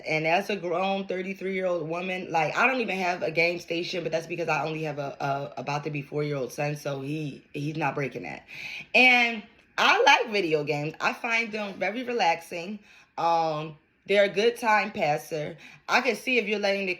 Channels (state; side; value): identical; both; correlation 1.00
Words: And as a grown 33-year-old woman, like, I don't even have a game station, but that's because I only have a about to be 4-year-old son, so he's not breaking that. And I like video games. I find them very relaxing. They're a good time passer. I can see if you're letting it